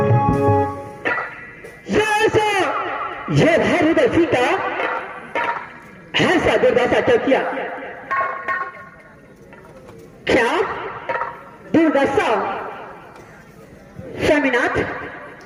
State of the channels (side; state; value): both; identical; correlation 1.00